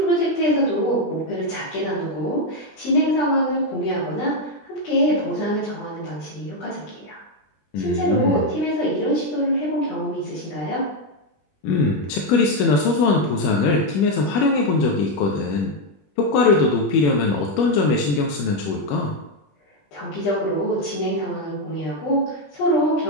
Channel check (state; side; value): late; right; 20 ms